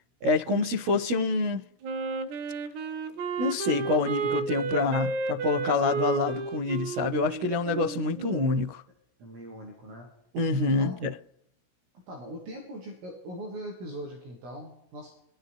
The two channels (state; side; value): late; left; 17 ms